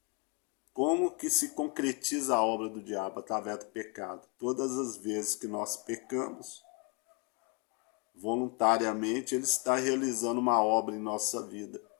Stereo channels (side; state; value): right; quieter; 32.8 dB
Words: Como que se concretiza a obra do diabo? Através do pecado. Todas as vezes que nós pecamos, voluntariamente, ele está realizando uma obra em nossa vida.